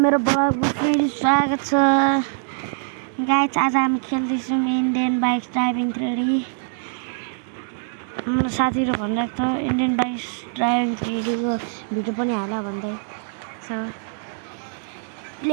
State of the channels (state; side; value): silent; left; 63 dB below the other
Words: मेरो ब्लगमा फेरि स्वागत छ। गाइस, आज हामी खेल्दैछौँ इन्डियन बाइक ड्राइभिङ 3D। मेरो साथीहरू भनिरहेको छ इन्डियन बाइक ड्राइभिङ 3D को भिडियो पनि हाल भन्दै छ।